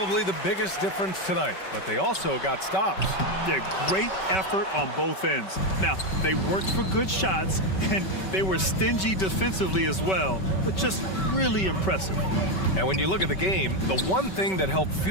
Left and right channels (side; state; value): right; late; 5.2 ms